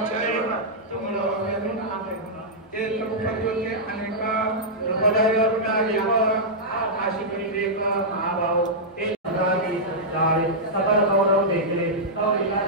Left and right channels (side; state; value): both; normal; correlation -0.10